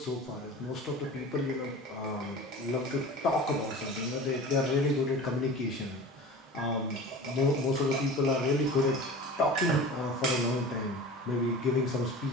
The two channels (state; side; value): normal; both; correlation 0.37